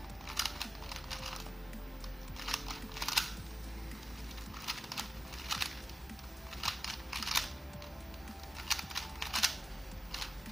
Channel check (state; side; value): normal; both; correlation 0.96